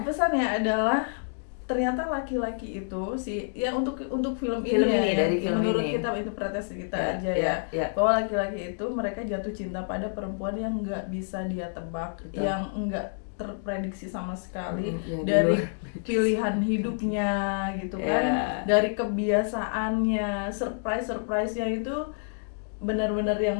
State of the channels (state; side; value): silent; right; digital silence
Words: adalah ternyata laki-laki itu untuk film ini dari film menurut ini. Kita interpretasi kita aja bahwa laki-laki itu mereka jatuh cinta pada perempuan yang nggak bisa dia tebak, yang nggak terprediksi sama sekali dari pilihan hidupnya gitu kan, dari kebiasaannya, surprise-nya itu benar-benar yang